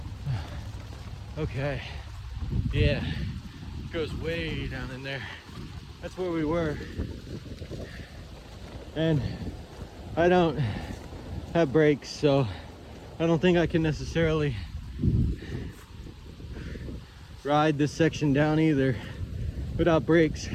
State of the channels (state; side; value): identical; both; correlation 1.00